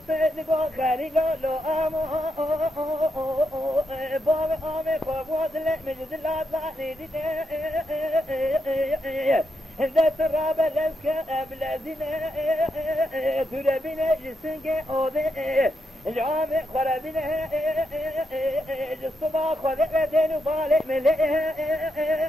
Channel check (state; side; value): normal; both; correlation 0.83